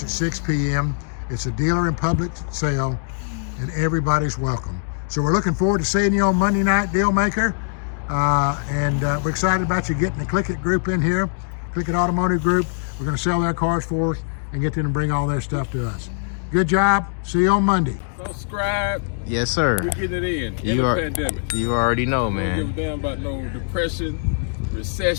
at 6 p.m. It's a dealer and public sale, and everybody's welcome. So we're looking forward to seeing you on Monday night, deal maker. And we're excited about you getting the Click It group in here. Click It Automotive Group. We're going to sell their cars for us and get them to bring all their stuff to us. Good job. See you on Monday. Subscribe. Yes, sir. We're getting it in the pandemic. You already know, man. We don't give a damn about no depression,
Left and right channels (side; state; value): right; silent; digital silence